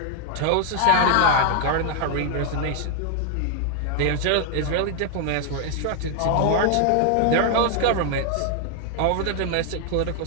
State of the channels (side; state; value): both; different; correlation 0.00